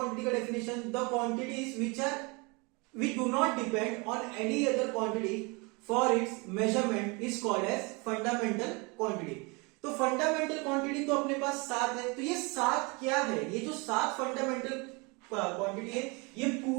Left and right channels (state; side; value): quieter; left; 28.8 dB